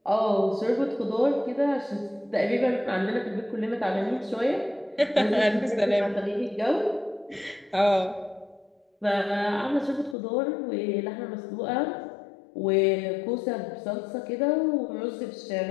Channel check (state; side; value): drops out; right; at 10.2 s